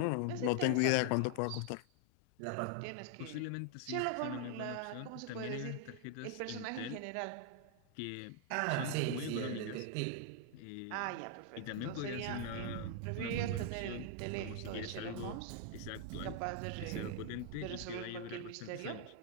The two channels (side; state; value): both; different; correlation 0.00